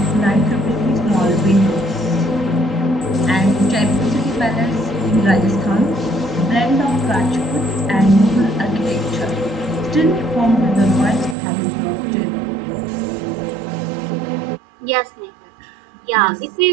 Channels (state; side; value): drops out; left; at 11.4 s